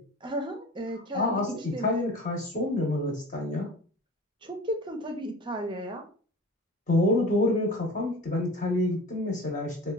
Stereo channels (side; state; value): both; normal; correlation 0.38